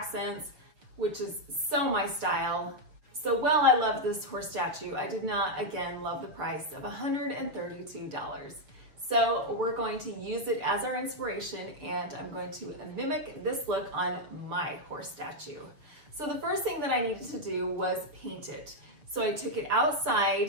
which is so my style. So while I loved this horse statue, I did not, again, love the price of $132. So we're going to use it as our inspiration, and I'm going to mimic this look on my horse statue. So the first thing that I needed to do was paint it. So I took it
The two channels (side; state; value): left; late; 6.5 ms